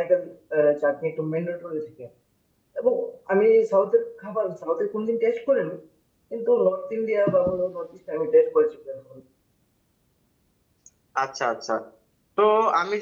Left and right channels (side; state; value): both; identical; correlation 1.00